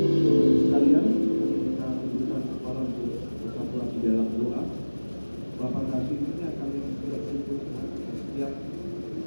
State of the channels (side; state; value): both; inverted; correlation -1.00